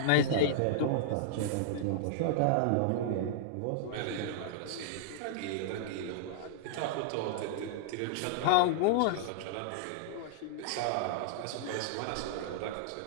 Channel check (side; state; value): both; different; correlation -0.01